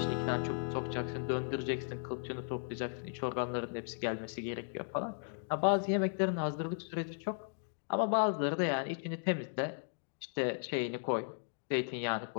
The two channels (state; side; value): silent; right; digital silence